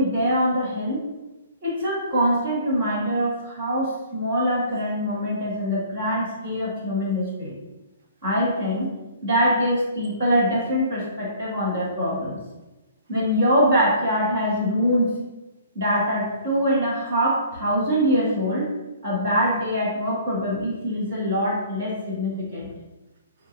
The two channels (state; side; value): inverted; both; correlation -0.51